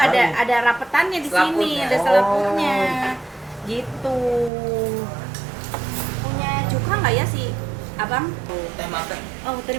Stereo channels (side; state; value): left; drops out; at 4.5 s